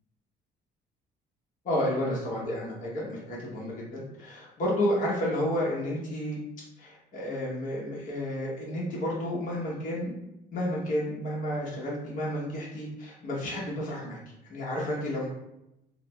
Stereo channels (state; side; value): normal; both; correlation 0.54